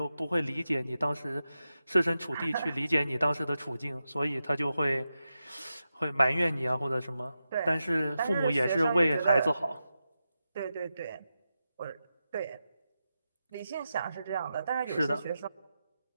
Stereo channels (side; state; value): both; inverted; correlation -0.90